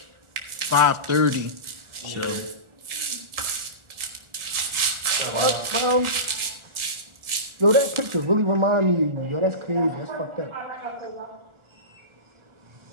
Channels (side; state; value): left; late; 1.4 ms